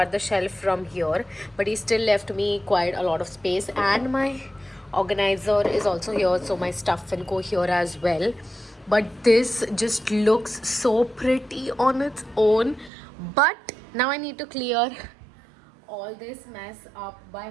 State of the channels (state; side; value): drops out; left; at 12.9 s